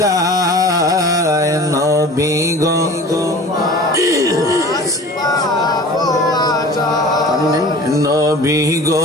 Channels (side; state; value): both; normal; correlation 0.40